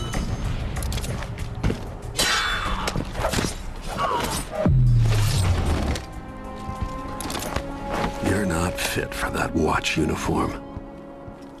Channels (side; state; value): both; identical; correlation 1.00